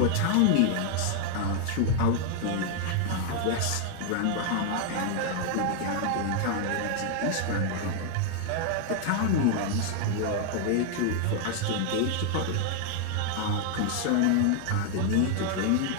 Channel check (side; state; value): both; different; correlation 0.00